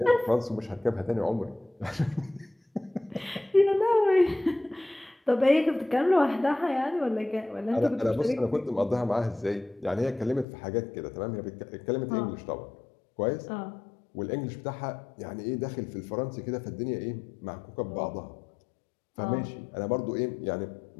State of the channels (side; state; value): right; drops out; at 10.5 s